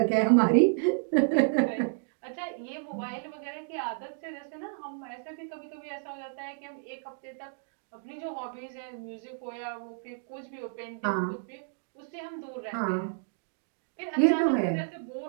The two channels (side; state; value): left; silent; digital silence